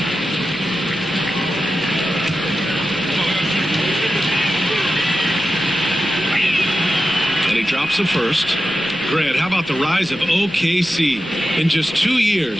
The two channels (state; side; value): noise; left; rumble, 25 dB below the sound